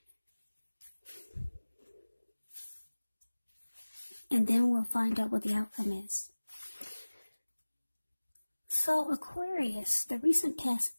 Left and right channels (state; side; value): inverted; both; correlation -1.00